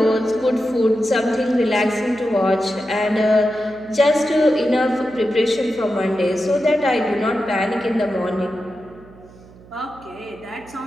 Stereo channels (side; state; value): right; noise; hum, 23 dB below the sound